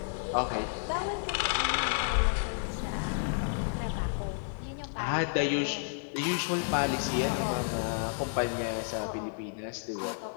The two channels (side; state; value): right; silent; digital silence